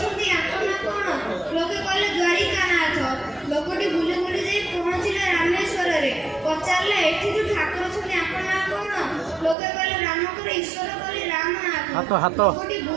आपन कोन लोके कहले द्वारिकानाथ। लोकटी बुली बुली जाई पहुँचले रामेश्वर रे पचारे एठी ठाकुर अछंती आपन कोन लोके कहले रामकर ईश्वर कहले रामनाथ। लोकटी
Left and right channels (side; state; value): left; drops out; at 9.6 s